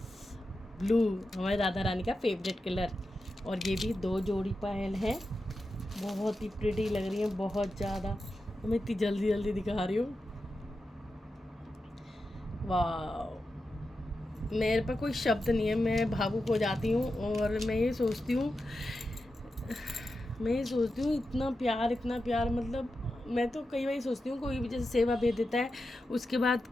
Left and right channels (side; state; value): both; normal; correlation 0.90